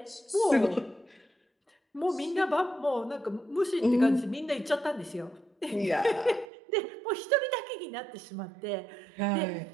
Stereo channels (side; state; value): left; drops out; at 6.5 s